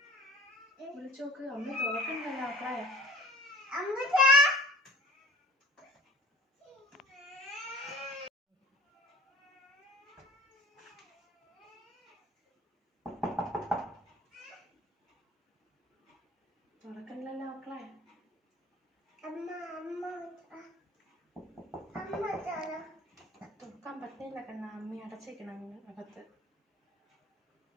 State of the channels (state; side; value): normal; both; correlation 0.46